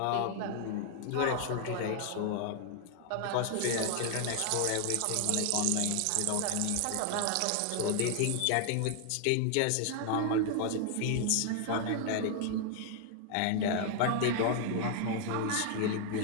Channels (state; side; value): different; both; correlation 0.00